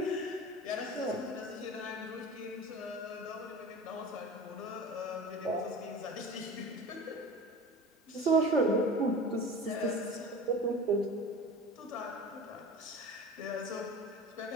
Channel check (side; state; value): both; normal; correlation 0.36